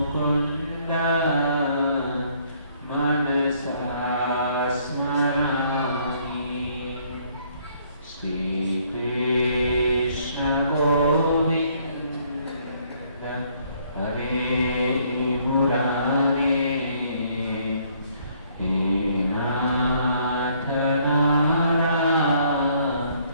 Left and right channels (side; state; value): both; inverted; correlation -0.65